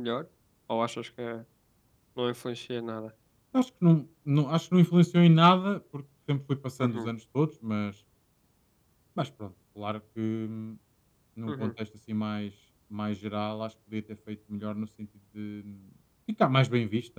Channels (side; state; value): both; identical; correlation 1.00